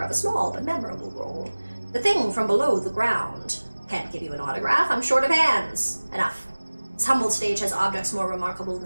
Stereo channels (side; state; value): both; inverted; correlation -1.00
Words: of a small but memorable role. The thing from below the ground. Can't give you an autograph, I'm short of hands. Enough. This humble stage has objects more remarkable